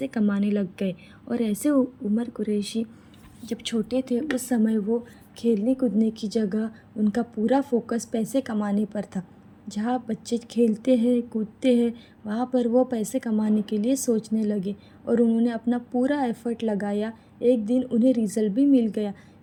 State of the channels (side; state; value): both; identical; correlation 1.00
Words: कमाने लग गए। और ऐसे उमर कुरैशी जब छोटे थे उस समय वो खेलने कूदने की जगह उनका पूरा फोकस पैसे कमाने पर था। जहाँ बच्चे खेलते हैं कूदते हैं वहाँ पर वो पैसे कमाने के लिए सोचने लगे और उन्होंने अपना पूरा एफ़र्ट लगाया। एक दिन उन्हें रिज़ल्ट भी मिल गया।